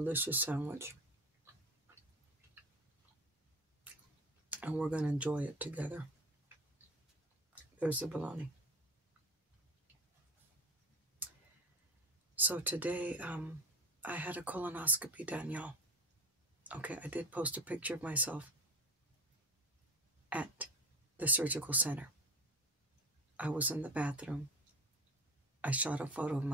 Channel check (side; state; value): both; normal; correlation 0.31